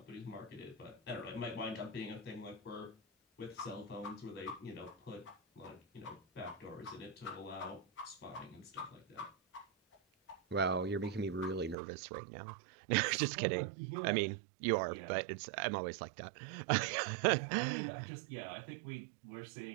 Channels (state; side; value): drops out; left; at 11.8 s